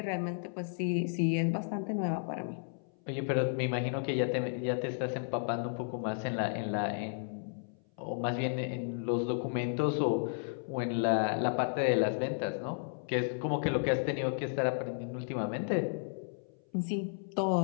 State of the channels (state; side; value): silent; right; 55 dB below the other